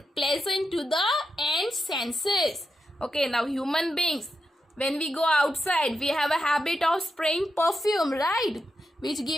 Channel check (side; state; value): both; normal; correlation 0.87